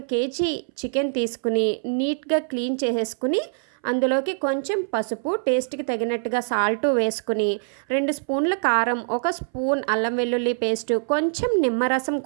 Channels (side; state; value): left; silent; 61 dB below the other